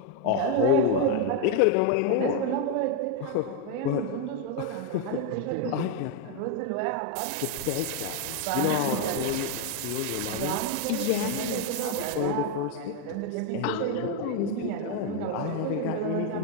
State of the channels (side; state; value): both; different; correlation 0.01